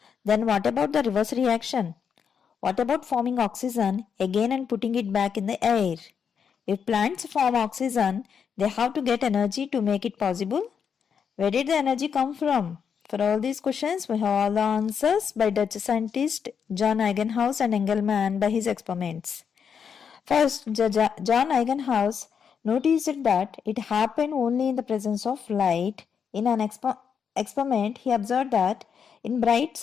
then what about the reverse reaction? What about forming oxygen again and putting it back in the air? If plants form oxygen, they have to get energy to make it possible. Where did the energy come from? For all these questions, we have all the answers by Dutch scientist John Eijgenhaus and Engelmann by his experiments. First, John Eijgenhaus noticed that it happened only in the presence of light. In an experiment, he observed that in bright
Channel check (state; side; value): quieter; right; 7.0 dB